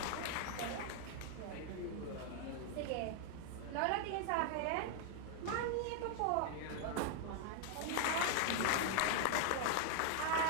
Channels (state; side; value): different; both; correlation 0.00